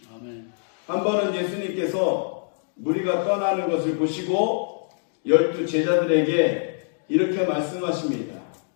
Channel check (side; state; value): right; silent; digital silence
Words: 아멘. 한 번은 예수님께서 무리가 떠나는 것을 보시고 12 제자들에게 이렇게 말씀하십니다.